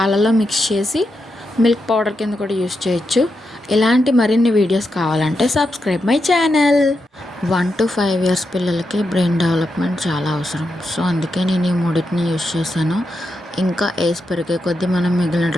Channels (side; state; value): both; normal; correlation 0.86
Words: మిక్స్ చేసి మిల్క్ పౌడర్ కింద కూడా యూస్ చేయొచ్చు. ఇలాంటి మరిన్ని వీడియోస్ కావాలంటే subscribe my channel. 1 to 5 years పిల్లలకి బ్రెయిన్ డెవలప్మెంట్ చాలా అవసరం. సో అందుకే నేను ఈ మూడింటిని యూస్ చేశాను. ఇంకా ఏజ్ పెరిగే కొద్దీ మనం మిగిలిన